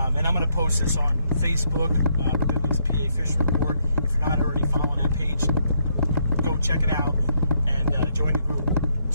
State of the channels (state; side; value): inverted; both; correlation -0.74